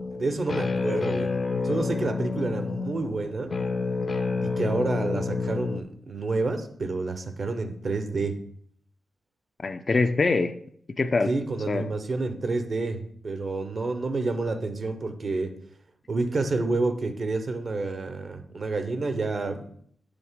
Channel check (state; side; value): normal; both; correlation 0.88